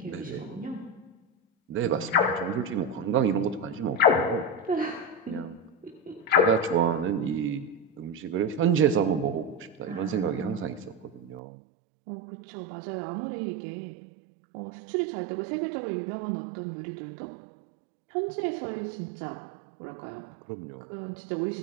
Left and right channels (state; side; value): drops out; left; at 11.4 s